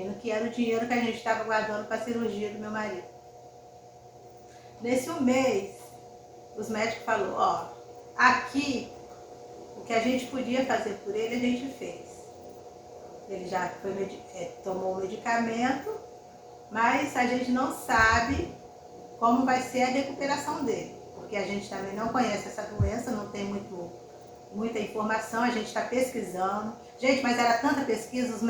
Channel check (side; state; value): both; identical; correlation 1.00